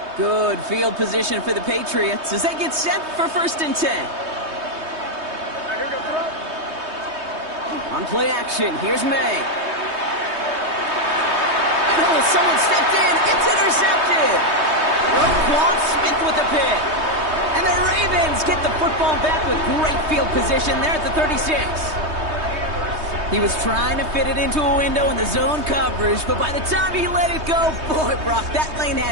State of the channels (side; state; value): left; late; 3.2 ms